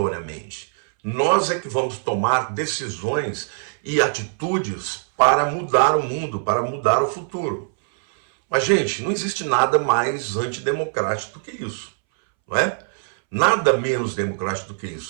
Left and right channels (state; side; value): silent; left; 63 dB below the other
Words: Nós é que vamos tomar decisões e atitudes para mudar o mundo, para mudar o futuro. Mas, gente, não existe nada mais antidemocrático do que isso, não é? Nada menos democrático do que